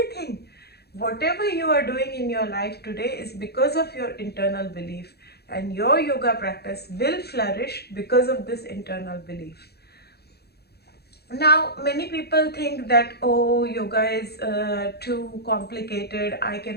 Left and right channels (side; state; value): right; late; 0.47 ms